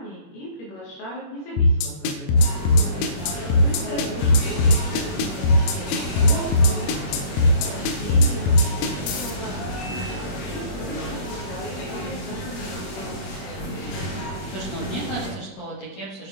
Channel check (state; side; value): late; right; 22 ms